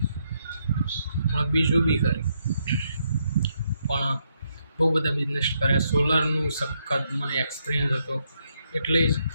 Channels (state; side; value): inverted; both; correlation -0.77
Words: પણ બીજું બી કરી પણ બહુ બધા બિઝનેસ કર્યા. સોલરનું સખત મને એક્સપિરિયન્સ હતો, એટલે જ